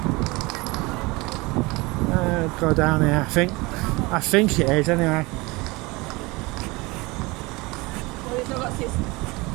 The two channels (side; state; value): left; quieter; 24.0 dB